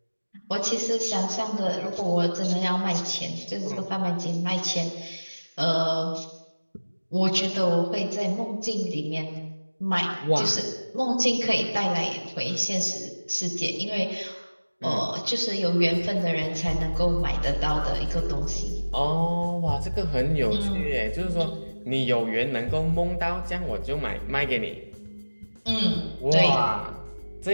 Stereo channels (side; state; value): both; inverted; correlation -1.00